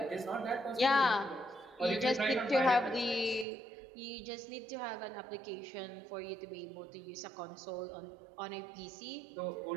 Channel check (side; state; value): left; drops out; at 3.5 s